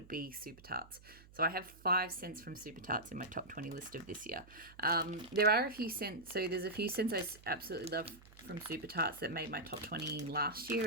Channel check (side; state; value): right; noise; hum, 22 dB below the sound